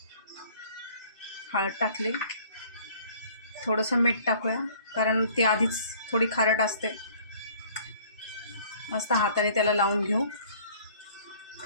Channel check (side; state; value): both; inverted; correlation -0.54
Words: हळद टाकली, थोडंसं मीठ टाकूया कारण ती आधीच थोडी खारट असते. मस्त हाताने त्याला लावून घेऊ.